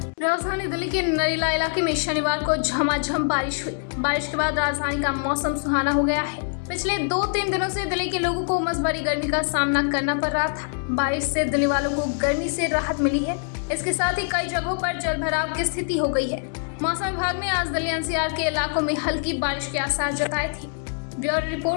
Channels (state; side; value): silent; right; 62 dB below the other